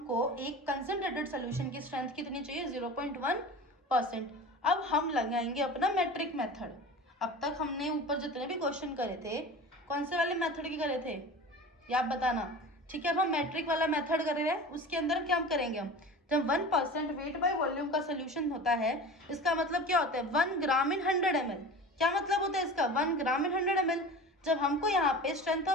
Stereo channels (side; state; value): both; normal; correlation 0.35